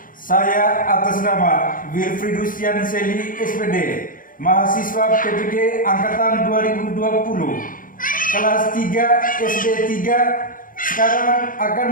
saya atas nama Wilfridus Yanseli SPD, mahasiswa PPD Angkatan 2020, kelas 3 SD 3, sekarang akan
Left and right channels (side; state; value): right; late; 0.40 ms